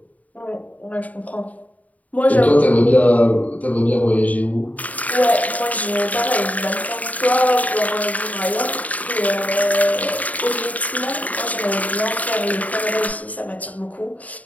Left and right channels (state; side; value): late; right; 0.072 ms